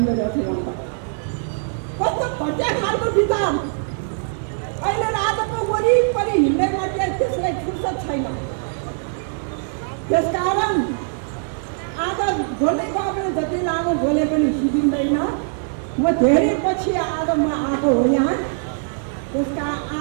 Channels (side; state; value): left; silent; digital silence